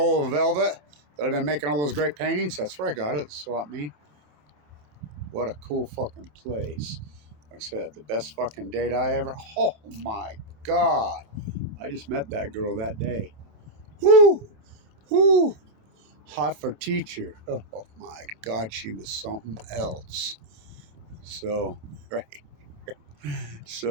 of velvet that I've been making all those great paintings, that's where I got it. Swap me. What a cool fucking place. Like I said, the best fucking date I ever. Oh my God. I just met that girl that day. Whoo! Whoo! Hot for teacher. Oh my God, she was something else. So, right.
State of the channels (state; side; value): late; left; 27 ms